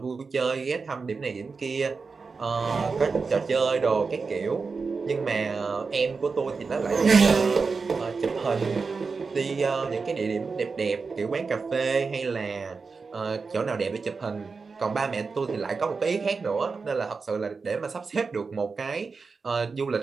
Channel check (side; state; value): left; quieter; 4.7 dB